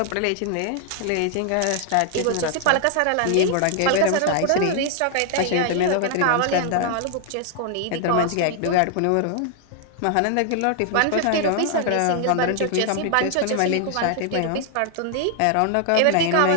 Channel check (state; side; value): different; both; correlation 0.00